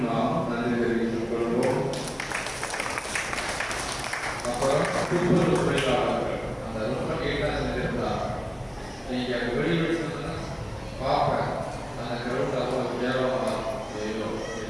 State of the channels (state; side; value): identical; both; correlation 1.00